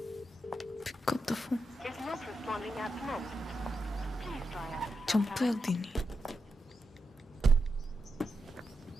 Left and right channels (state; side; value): normal; both; correlation 0.87